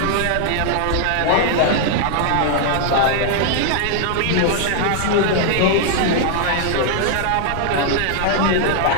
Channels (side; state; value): both; different; correlation 0.00